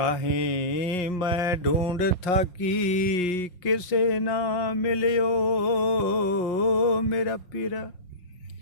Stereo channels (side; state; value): right; late; 5.6 ms